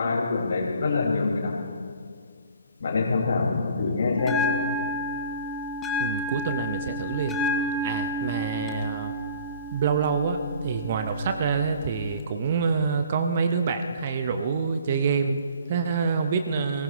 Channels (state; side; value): inverted; both; correlation -0.51